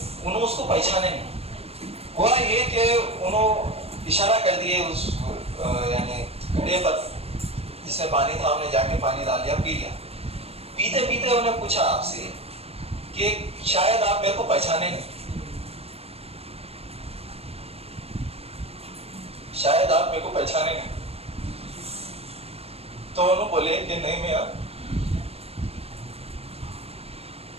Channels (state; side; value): late; left; 0.29 ms